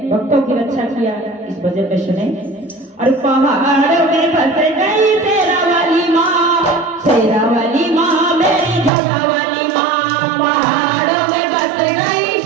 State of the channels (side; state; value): left; drops out; at 8.9 s